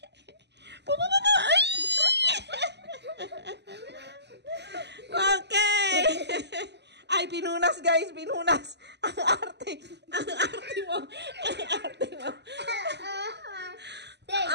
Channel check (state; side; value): late; left; 0.50 ms